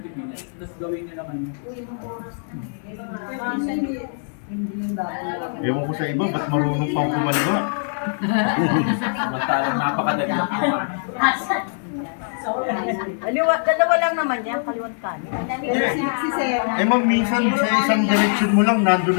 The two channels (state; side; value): silent; right; digital silence